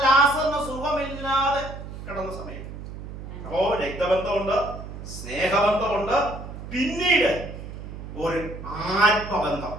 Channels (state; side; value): noise; right; hum, 11 dB below the sound